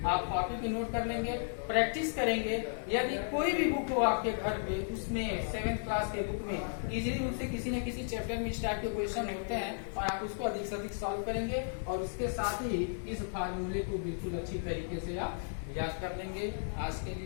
आप कॉपी पे नोट कर लेंगे, प्रैक्टिस करेंगे। यदि कोई भी बुक हो आपके घर पे, उसमें 7th क्लास के बुक में इजीली रूप से किसी न किसी चैप्टर में इस टाइप के क्वेश्चन होते हैं और आप उसको अधिक से अधिक सॉल्व करेंगे, और उसके साथ ही इस फार्मूले को बिल्कुल अच्छी तरीके से आप याद कर लेंगे। आज के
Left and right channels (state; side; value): silent; right; 55 dB below the other